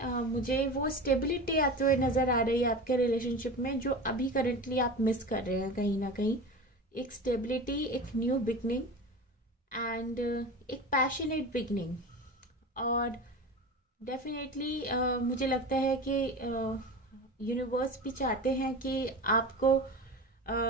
मुझे वो स्टेबिलिटी आते हुए नज़र आ रही है आपके रिलेशनशिप में, जो अभी करंटली आप मिस कर रहे हैं कहीं ना कहीं। एक स्टेबिलिटी, एक न्यू बिगनिंग, एंड एक पैशनेट बिगनिंग। और डेफिनेटली मुझे लगता है कि यूनिवर्स भी चाहते हैं कि आपको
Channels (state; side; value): normal; both; correlation 0.30